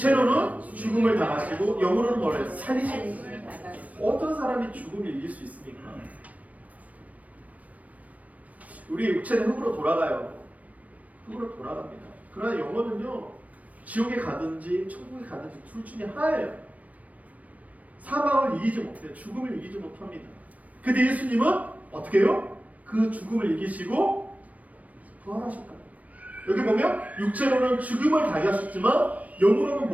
죽음을 당하시고 영으로는 뭐를 살리십니다. 어떤 사람이 죽음을 이길 수 있습니까? 우리의 육체는 흙으로 돌아가요. 흙으로 돌아갑니다. 그러나 영혼은요 지옥에 가든지 천국에 가든지 둘 중에 하나예요. 사망을 이기지 못해요. 죽음을 이기지 못합니다. 근데 예수님은 어떻게 해요? 그 죽음을 이기시고 부활하셨다. 여기 보면 육체로는 죽음을 당하셨지만 영으로는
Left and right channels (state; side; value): late; left; 0.070 ms